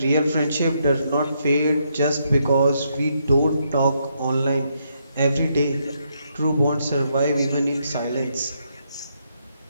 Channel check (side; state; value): both; inverted; correlation -0.77